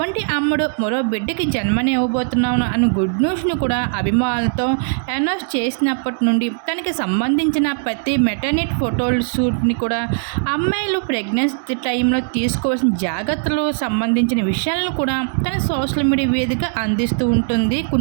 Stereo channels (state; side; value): silent; left; digital silence